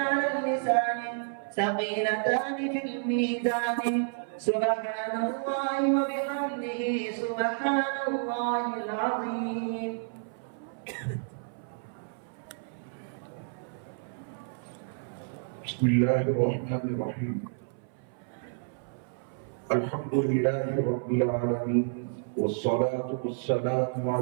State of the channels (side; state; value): left; silent; 58 dB below the other